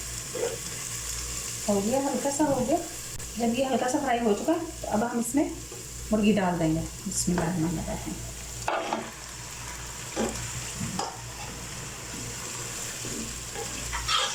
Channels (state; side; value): identical; both; correlation 1.00